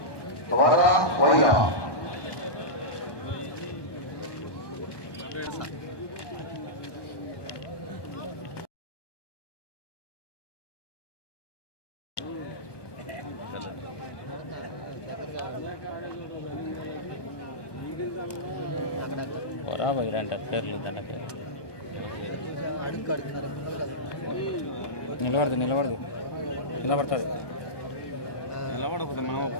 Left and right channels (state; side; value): late; right; 1.2 ms